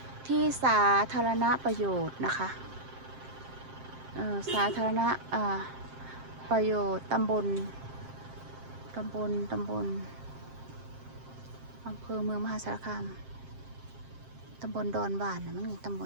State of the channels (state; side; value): late; left; 7.6 ms